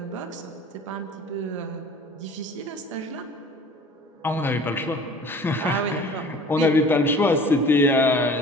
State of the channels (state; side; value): normal; both; correlation 0.46